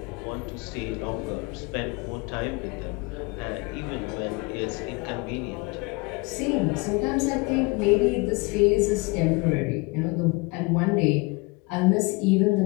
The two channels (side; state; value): right; quieter; 26.9 dB